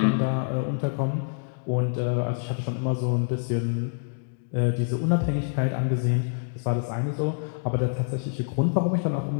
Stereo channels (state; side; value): silent; right; digital silence